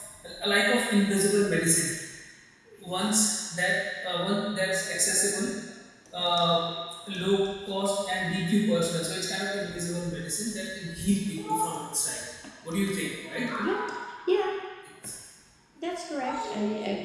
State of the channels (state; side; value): identical; both; correlation 1.00